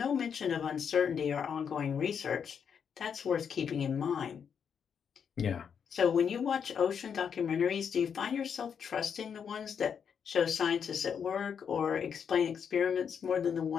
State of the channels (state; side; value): quieter; right; 7.2 dB